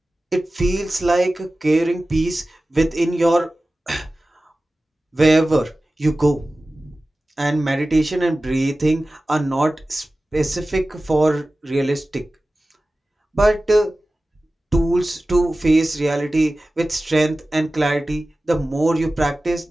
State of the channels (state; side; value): normal; both; correlation 0.96